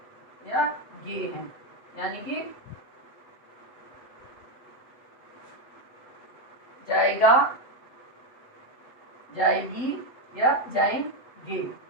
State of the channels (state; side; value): late; right; 8.0 ms